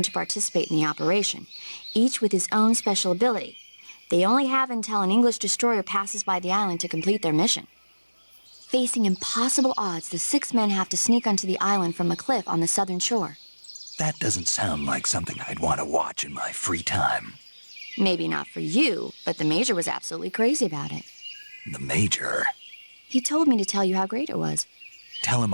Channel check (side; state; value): both; inverted; correlation -1.00